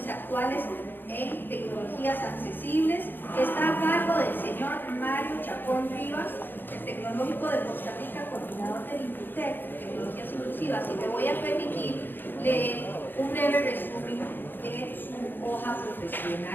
actuales en tecnologías accesibles, que está a cargo del señor Mario Chacón Rivas, el Tecnológico de Costa Rica, coordinador del INCUTEC, Tecnologías Inclusivas, y me voy a permitir leer un breve resumen de su hoja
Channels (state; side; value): late; right; 0.095 ms